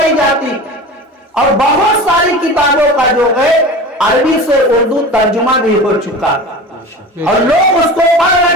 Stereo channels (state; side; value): normal; both; correlation 0.34